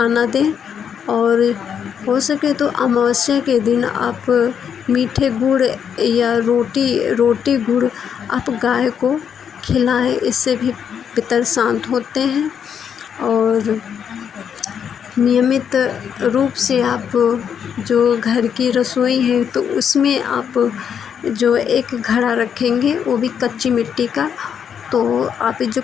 दें, और हो सके तो अमावस्या के दिन आप मीठे गुड़ या रोटी गुड़ आप गाय को खिलाएं, इससे भी पितर शांत होते हैं। और नियमित रूप से आप जो घर की रसोई है तो उसमें आप जो एक घड़ा रखेंगे वो भी कच्ची मिट्टी का, तो आप जो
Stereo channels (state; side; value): quieter; right; 7.9 dB